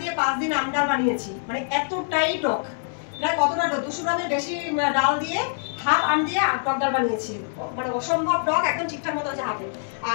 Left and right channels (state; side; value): silent; right; 62 dB below the other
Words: দিয়ে 5 দিন আম ডাল বানিয়েছি। মানে এতটাই টক, প্রায় কতটা 200 গ্রামের বেশি ডাল দিয়ে হাফ আম দিয়ে টক ডাল বানিয়েছি। মানে অসম্ভব টক, একদম ঠিকঠাক মতো আছে হাফে।